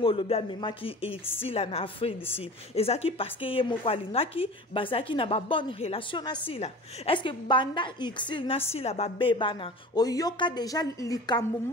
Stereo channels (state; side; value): normal; both; correlation 0.37